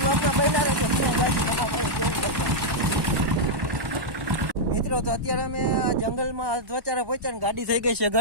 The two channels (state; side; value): late; left; 1.1 ms